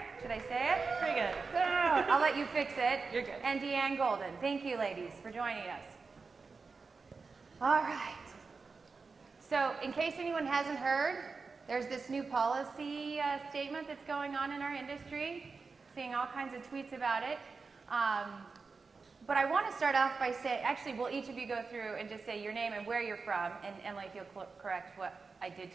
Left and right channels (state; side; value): quieter; left; 4.5 dB